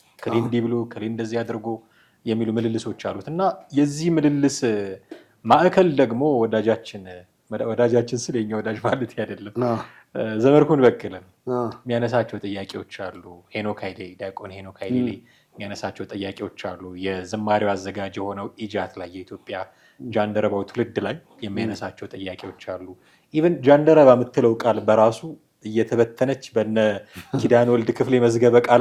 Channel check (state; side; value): identical; both; correlation 1.00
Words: ከሌ እንዲህ ብሎ ከሌ እንደዚህ አድርጎ የሚሉ ምልልሶች አሉት እና የዚህ ምልልስ ማዕከል ደግሞ ወዳጃችን ስለ የኛ ወዳጅ ማለት አይደለም ዘመርኩን በቀለም የሚያነሳቸው ጥያቄዎች አሉ። ዲያቆን ሄኖክ ኃይሌ የሚያነሳቸው ጥያቄዎች አሉ። የዝማሬው አዘጋጅ የሆነው ኢጃት ላይ የኢትዮጵያ ጃንደረባው ትውልድ ላይ የሚያነሳቸው ጥያቄዎች አሉ። ኢቨን ጃንደረባ የምትለው ቃል በራሱ እየተበተነች በነ ኪዳነ ወልድ ክፍሌ መዝገበ